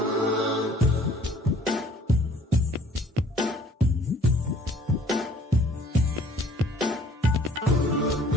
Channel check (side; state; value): both; normal; correlation 0.55